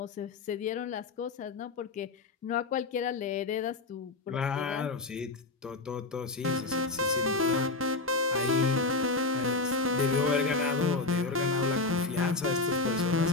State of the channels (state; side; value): quieter; right; 3.5 dB